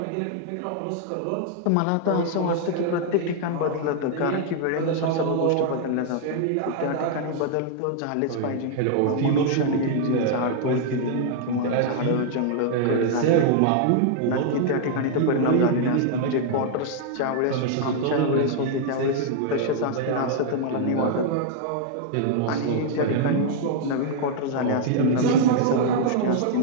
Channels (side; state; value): both; different; correlation 0.00